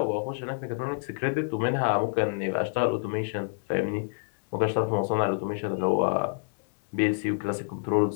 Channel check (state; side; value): silent; right; digital silence